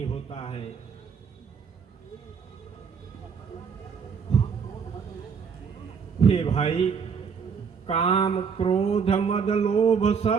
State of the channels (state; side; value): quieter; left; 6.3 dB